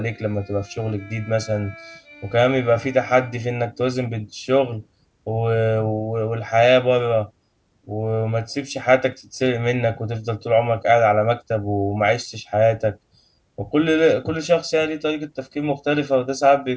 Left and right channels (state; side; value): identical; both; correlation 1.00